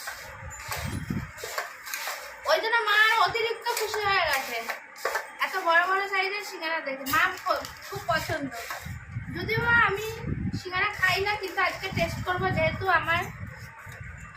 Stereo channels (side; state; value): both; identical; correlation 1.00